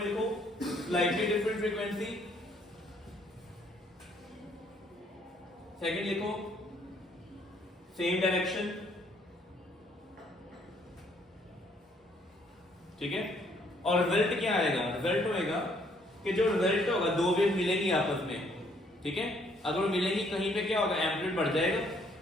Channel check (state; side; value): normal; both; correlation 0.66